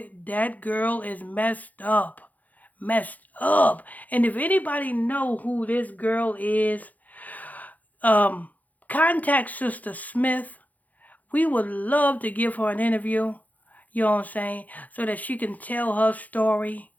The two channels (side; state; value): right; late; 0.079 ms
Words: girl is messed up. Messed up. And if anybody know who this girl is, contact Sister Smith. We would love to give her an interview, you know what I'm saying, so that she can tell her story,